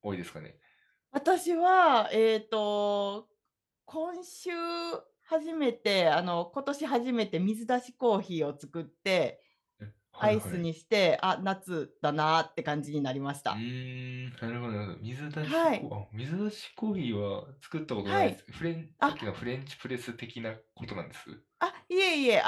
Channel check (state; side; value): identical; both; correlation 1.00